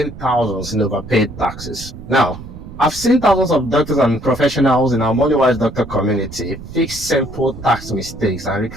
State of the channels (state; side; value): noise; right; rumble, 14 dB below the sound